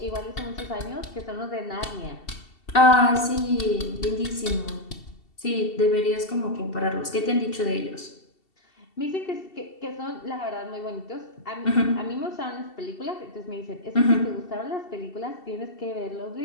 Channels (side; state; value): right; late; 2.7 ms